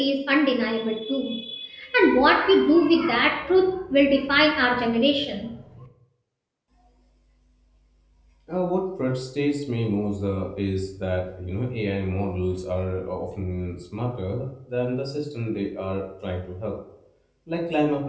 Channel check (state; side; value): identical; both; correlation 1.00